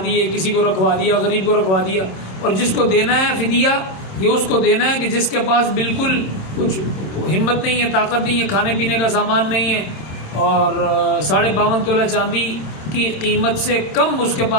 دیے، کسی کو رکھوا دیا، غریب کو رکھوا دیا. اور جس کو دینا ہے فدیہ، یہ اس کو دینا ہے کہ جس کے پاس بالکل کچھ ہمت نہیں ہے، طاقت نہیں ہے، کھانے پینے کا سامان نہیں ہے، اور 52.5 تولہ چاندی کی قیمت سے کم اس کے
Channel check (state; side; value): late; right; 27 ms